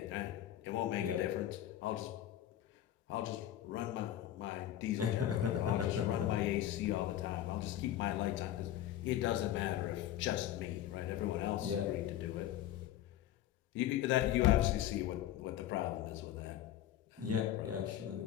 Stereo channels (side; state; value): right; quieter; 12.3 dB